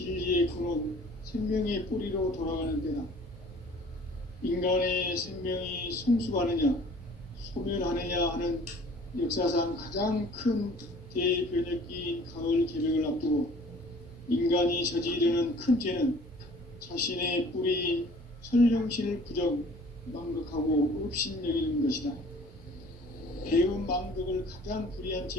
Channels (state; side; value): normal; both; correlation 0.51